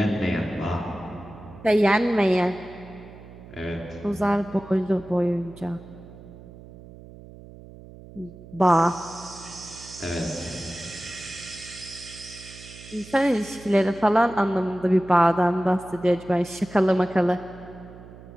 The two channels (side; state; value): right; noise; hum, 18 dB below the sound